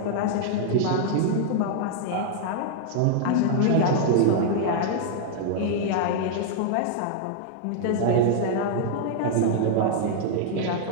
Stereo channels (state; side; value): different; both; correlation -0.01